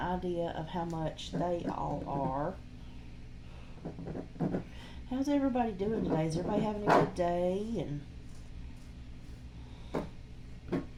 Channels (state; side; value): identical; both; correlation 1.00